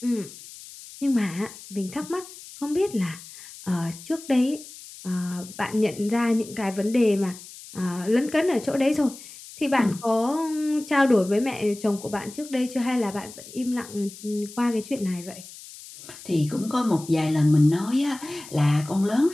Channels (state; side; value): noise; left; hiss, 16 dB below the sound